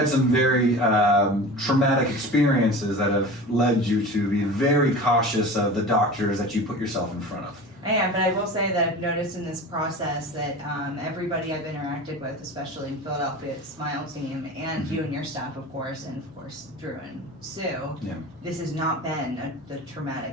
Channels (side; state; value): left; noise; hum, 30 dB below the sound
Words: some very traumatic experiences that have led you to be very cautious of the doctors that you put yourself in front of. I am, but I will say that I've noticed in this process that everybody I've interacted with, especially in Philadelphia at Smile Team, and you and your staff, of course, and of course Drew and Sue, this has not been the